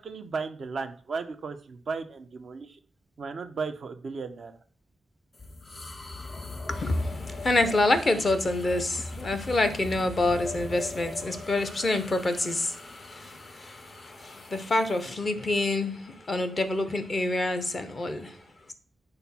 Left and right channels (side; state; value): both; normal; correlation 0.86